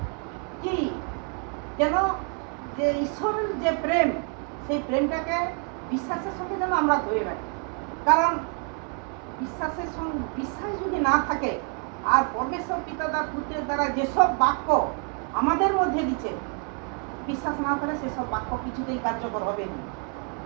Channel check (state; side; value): quieter; left; 39.9 dB